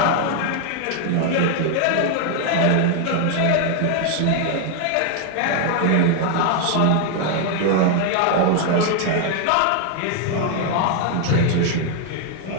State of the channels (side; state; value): both; different; correlation 0.00